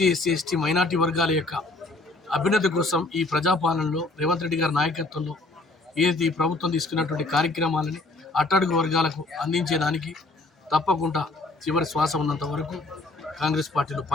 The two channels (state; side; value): quieter; right; 3.1 dB